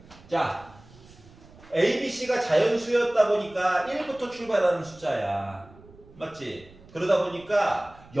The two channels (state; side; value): noise; right; rumble, 23 dB below the sound